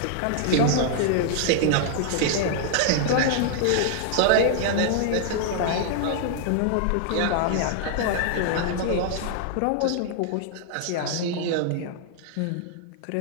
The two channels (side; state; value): both; different; correlation -0.01